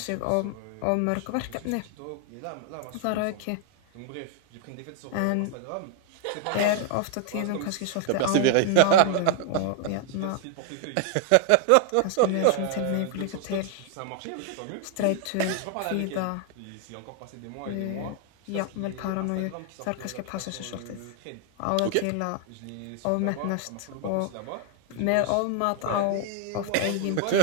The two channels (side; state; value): both; different; correlation 0.00